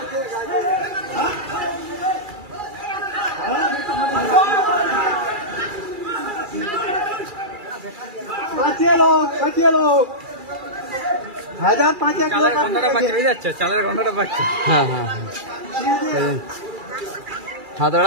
বাঁচিয়ে লোক 1005 চালের গন্ধটা পাচ্ছি, বুঝে যাচ্ছে চালের গন্ধটা পাচ্ছি। হ্যাঁ হ্যাঁ হ্যাঁ, হাত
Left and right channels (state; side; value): late; left; 2.4 ms